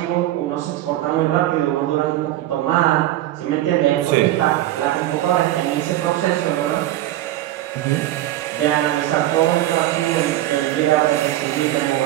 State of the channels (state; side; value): quieter; left; 14.6 dB